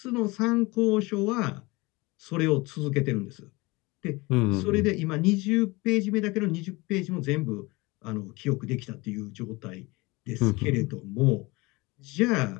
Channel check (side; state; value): right; quieter; 23.7 dB